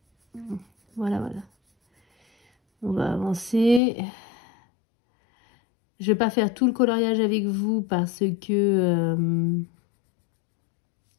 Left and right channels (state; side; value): drops out; right; at 3.8 s